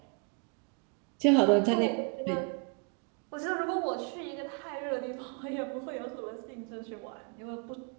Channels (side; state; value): left; quieter; 37.7 dB